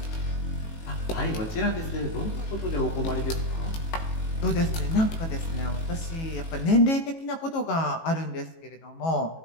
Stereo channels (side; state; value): right; late; 18 ms